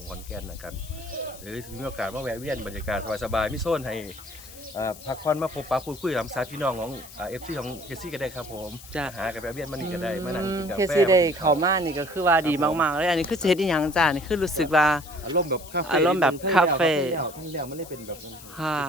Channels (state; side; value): noise; left; hiss, 17 dB below the sound